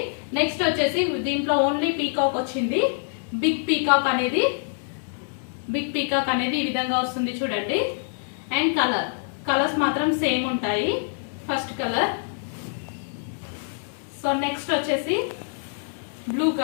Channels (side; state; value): right; silent; digital silence